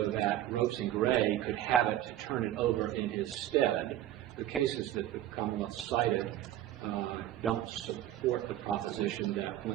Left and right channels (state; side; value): quieter; left; 12.8 dB